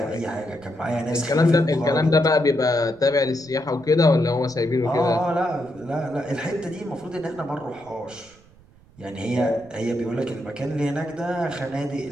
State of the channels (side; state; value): right; noise; rumble, 26 dB below the sound